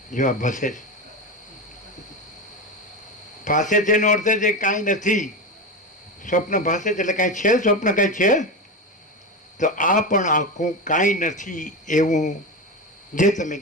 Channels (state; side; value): normal; both; correlation 0.19